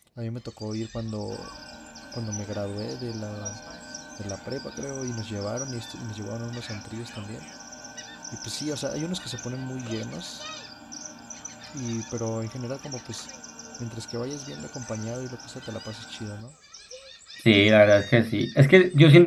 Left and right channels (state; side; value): identical; both; correlation 1.00